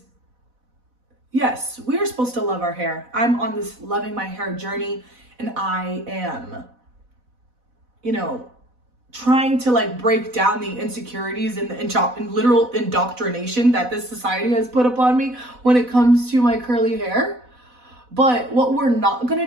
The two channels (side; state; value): left; late; 4.0 ms